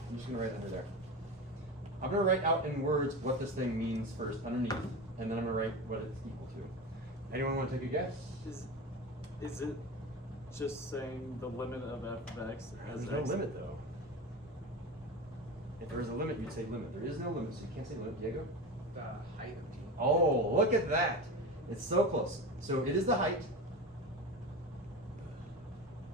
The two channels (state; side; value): normal; both; correlation 0.25